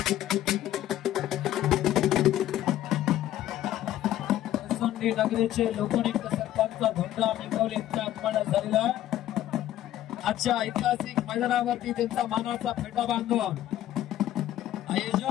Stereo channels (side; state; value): right; quieter; 12.9 dB